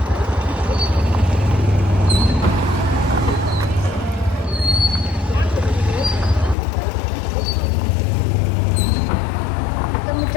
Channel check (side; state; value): right; drops out; at 6.6 s